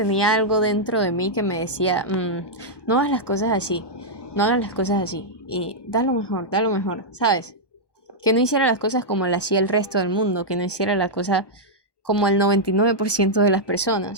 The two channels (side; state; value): right; late; 1.2 ms